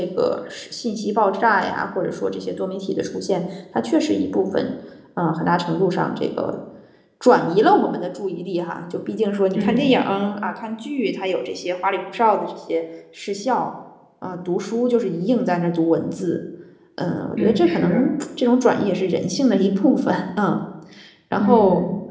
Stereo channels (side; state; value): both; identical; correlation 1.00